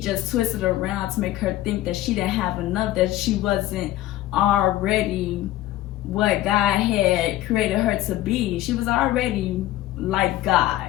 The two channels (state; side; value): quieter; right; 14.9 dB